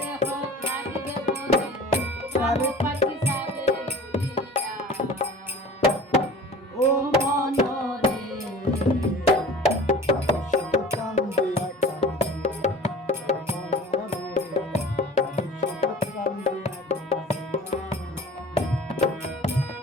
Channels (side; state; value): both; normal; correlation 0.43